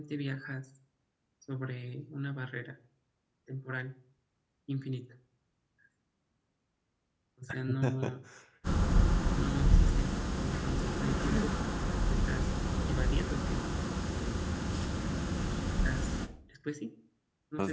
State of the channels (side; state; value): both; identical; correlation 1.00